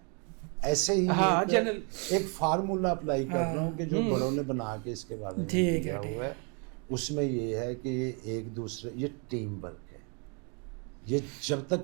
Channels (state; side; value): quieter; left; 36.1 dB